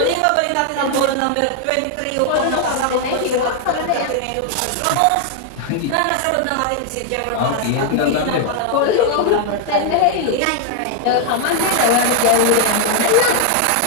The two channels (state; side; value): different; both; correlation 0.00